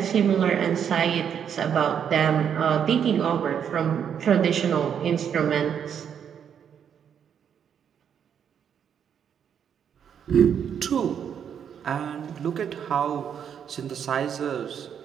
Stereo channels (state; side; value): quieter; left; 8.2 dB